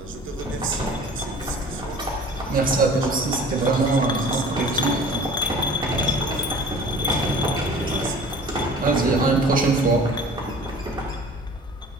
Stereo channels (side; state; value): both; normal; correlation 0.45